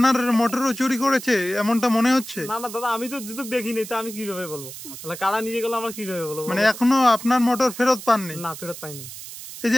মোটরও চুরি করেছে এমনটা মনে হচ্ছে? না না দাদা, আমি তো যেহেতু দেখিনি, তা আমি কিভাবে বলবো? তাহলে কারা নিয়ে গেল আমরা কিভাবে বলবো? মানে এখনো আপনার মোটর ফেরত পাননি? না, ফেরত পাইনি। এই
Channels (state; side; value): noise; right; hiss, 12 dB below the sound